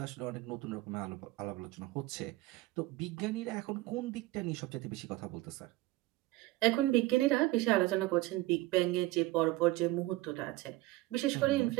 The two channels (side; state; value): left; quieter; 18.8 dB